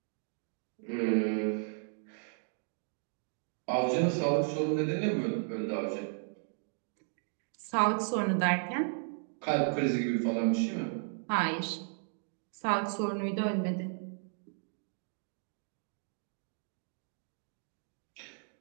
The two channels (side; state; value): left; silent; digital silence